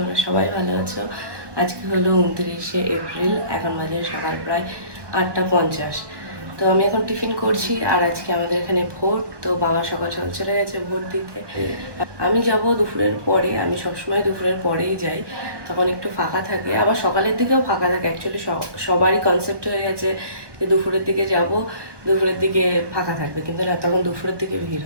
সবাই ভালো আছো। আজকে হলো 29শে এপ্রিল, এখন বাজে সকাল প্রায় 8:50। তো আমি এখন টিফিন করছি, আর আজকে আমাদের এখানে ভোট। তো বাবা সকাল সকাল চলে গেছে ভোট দিতে। আমি যাব দুপুরের পরে, আমি সবসময় দুপুরের পরেই যাই, তখন একটু ফাঁকা থাকে, আবার সকালের দিকেও ফাঁকা থাকে। অ্যাকচুয়ালি সবারই কনসেপ্ট হয়ে গেছে যে দুপুরের দিকে যাব, দুপুরের দিকে ফাঁকা থাকবে, কিন্তু না, তখন দুপুরের দিকে ভিড়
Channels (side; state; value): left; late; 1.2 ms